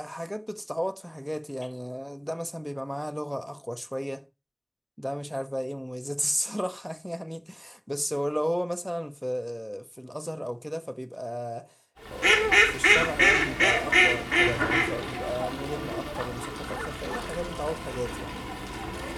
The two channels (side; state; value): both; identical; correlation 1.00